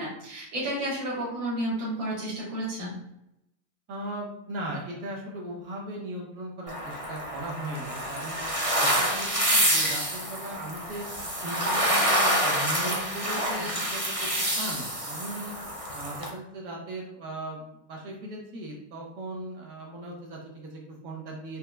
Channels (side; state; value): right; late; 1.6 ms